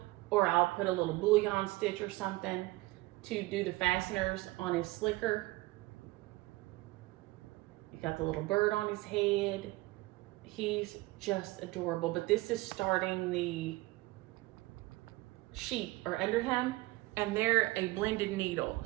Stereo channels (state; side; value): quieter; left; 20.3 dB